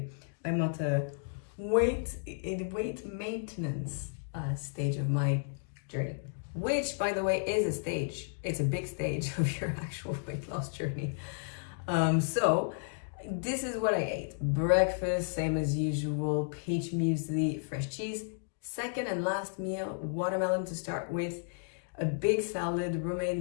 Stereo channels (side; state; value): right; silent; digital silence